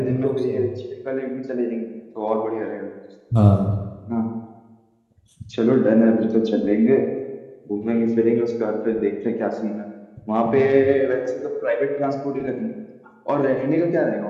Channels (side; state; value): both; identical; correlation 1.00